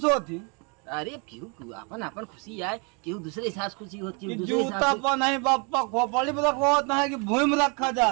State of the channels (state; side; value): quieter; left; 33.8 dB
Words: होती अरे क्यों अपन अपन खुशी आए क्यों दूसरे के साथ खुशी होती है कि दूसरे के जूता साथ पर नहीं बापा खोपड़ी में रखा होता है कि भूमि में रखा